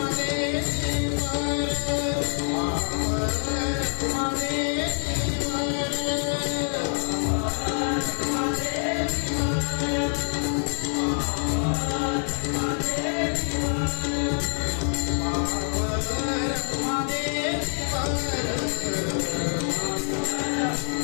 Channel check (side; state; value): right; silent; 58 dB below the other